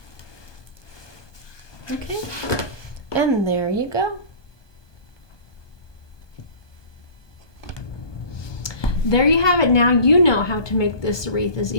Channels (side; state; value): right; late; 1.2 ms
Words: Okay, and there you go. There you have it. Now you know how to make this wreath as